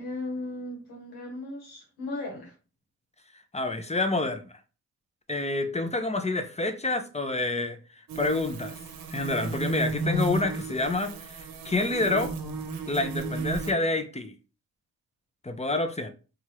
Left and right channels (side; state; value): both; normal; correlation 0.23